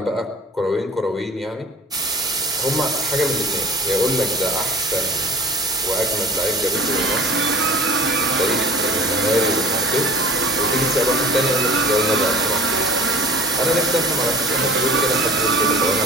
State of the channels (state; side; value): normal; both; correlation 0.43